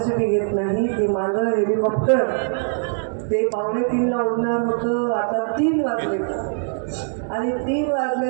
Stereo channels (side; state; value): left; silent; digital silence